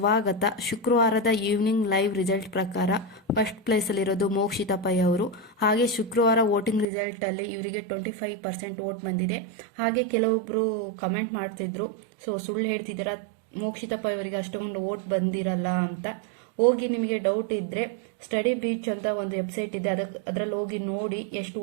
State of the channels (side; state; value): left; drops out; at 6.9 s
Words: ಶುಕ್ರವಾರದ ಈವ್ನಿಂಗ್ ಲೈವ್ ರಿಸಲ್ಟ್ ಪ್ರಕಾರ ಫಸ್ಟ್ ಪ್ಲೇಸಲ್ಲಿರೋದು ಮೋಕ್ಷಿತಾ ಪೈ ಅವರು. ಹಾಗೆ ಶುಕ್ರವಾರ ವೋಟಿಂಗ್ ರಿಸಲ್ಟಲ್ಲಿ ಇವರಿಗೆ 25% ವೋಟ್ ಬಂದಿದೆ. ಹಾಗೆ ಕೆಲವೊಬ್ಬರು ಕಮೆಂಟ್ ಮಾಡ್ತಿದ್ರು, ಸುಳ್ಳು ಹೇಳ್ತಿದ್ದೀರಾ, ಮೋಕ್ಷಿತಾ ಪೈ ಅವರಿಗೆ ಅಷ್ಟೊಂದು ವೋಟ್ ಬಂದಿರಲ್ಲ ಅಂತ. ಹೋಗಿ ನಿಮಗೆ ಡೌಟ್ ಇದ್ದರೆ ಸ್ಟಡಿ ಬೀಚ್ ಅಂತ ಒಂದು ವೆಬ್ಸೈಟ್ ಇದೆ, ಅದರಲ್ಲಿ ಹೋಗಿ ನೋಡಿ ಎಷ್ಟು